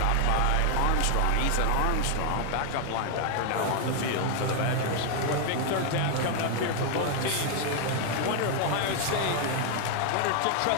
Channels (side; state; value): both; different; correlation 0.00